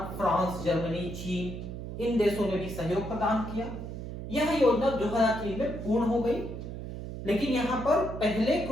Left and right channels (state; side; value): noise; right; hum, 8 dB below the sound